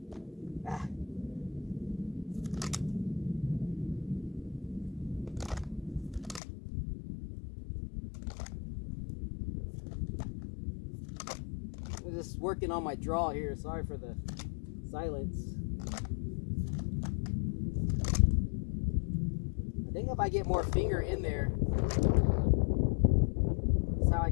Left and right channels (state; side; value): drops out; right; at 6.4 s